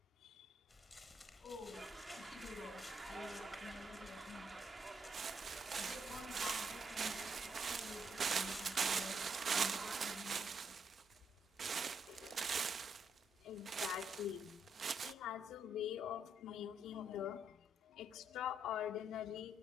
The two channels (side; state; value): both; normal; correlation 0.75